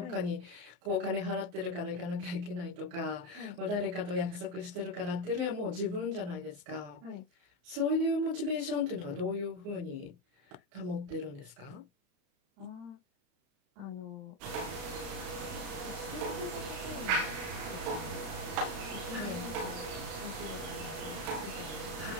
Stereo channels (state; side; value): late; left; 34 ms